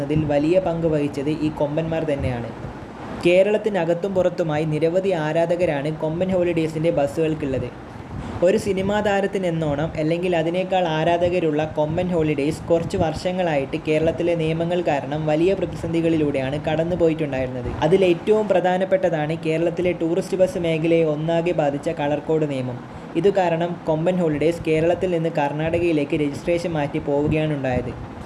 വലിയ പങ്ക് വഹിച്ചത് ഈ കൊമ്പന്മാർ തന്നെയാണ്. കേരളത്തിനകത്തും പുറത്തുമായി നിരവധി ആരാധകരാണ് കൊമ്പൻ ഹോളിഡേയ്സിൻ്റെ ബസ്സുകൾക്കുള്ളത്. ഒരു സിനിമാ താരത്തിനെന്നോണം അല്ലെങ്കിൽ അതിനേക്കാൾ ആരാധകരുള്ള കൊമ്പൻ ഹോളിഡേയ്സ് കുറച്ച് വർഷങ്ങളായിട്ട് കേരളത്തിലെ നിയമങ്ങൾ കാരണം വലിയ പ്രതിസന്ധികളിലൂടെയാണ് കടന്നു പോയിട്ടുണ്ടായിരുന്നത്. അതിലേറ്റവും പ്രധാനപ്പെട്ടതാണ് കേരളത്തിലെ ടൂറിസ്റ്റ് ബസ് മേഖലയെ ഒന്നാകെ ബാധിച്ച കളർ കോഡ് നിയമം. ഇതു കാരണം കൊമ്പൻ ഹോളിഡേയ്സ് കേരളത്തിൽ നിന്ന് കർണാടകയിലേക്ക് രജിസ്ട്രേഷൻ മാറ്റി പോവുകയാണ് ഉണ്ടായത്.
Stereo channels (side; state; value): both; identical; correlation 1.00